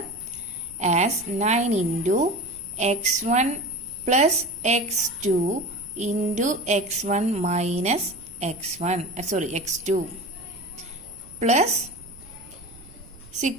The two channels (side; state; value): right; noise; rumble, 21 dB below the sound